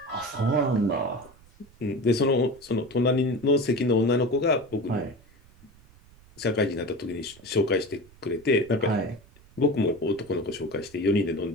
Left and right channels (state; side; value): noise; right; rumble, 26 dB below the sound